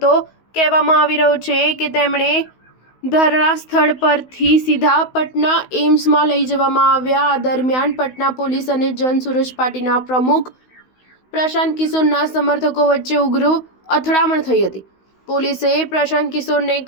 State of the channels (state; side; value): late; right; 16 ms